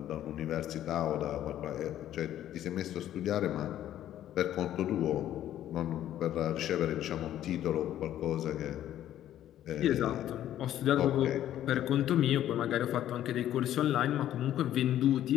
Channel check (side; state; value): right; quieter; 12.0 dB